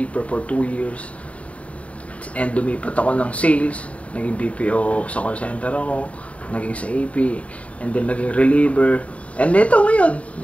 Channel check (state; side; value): late; right; 0.065 ms